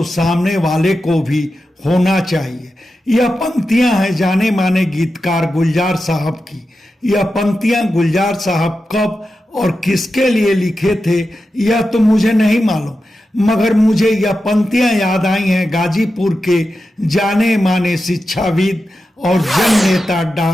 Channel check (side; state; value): both; normal; correlation 0.91